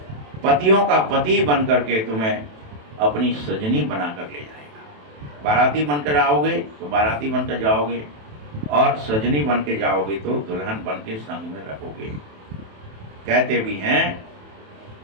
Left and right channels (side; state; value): left; late; 27 ms